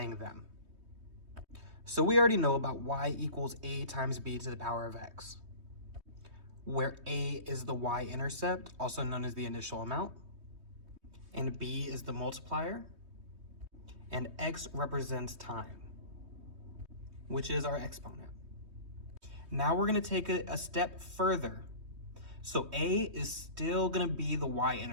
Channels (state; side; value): late; left; 3.2 ms